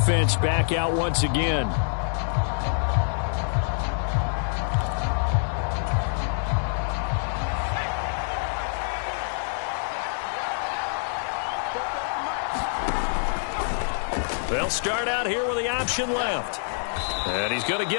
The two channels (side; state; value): right; silent; digital silence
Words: back out once again. They'll start out here with the option left. And he's going to